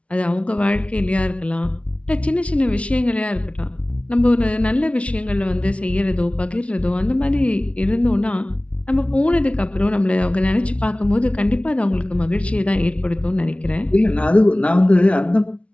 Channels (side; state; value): right; late; 0.062 ms